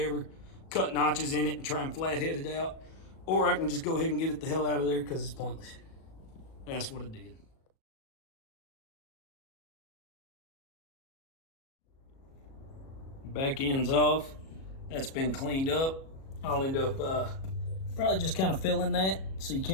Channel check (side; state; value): right; late; 37 ms